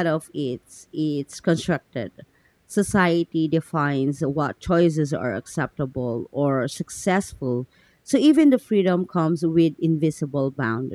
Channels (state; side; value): identical; both; correlation 1.00